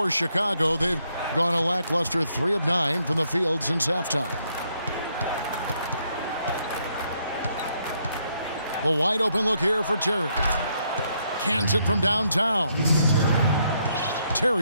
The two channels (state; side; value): inverted; both; correlation -0.74